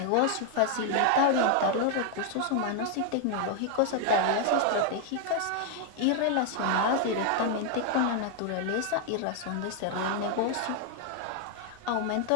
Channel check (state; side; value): different; both; correlation 0.00